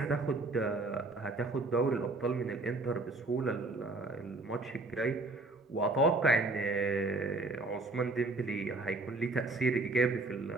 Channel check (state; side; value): quieter; left; 3.2 dB